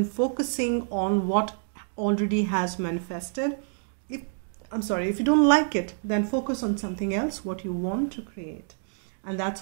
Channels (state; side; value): silent; left; digital silence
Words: focusing on what already has manifested. If you don't like it, then focus on something else, what you want to create. And that's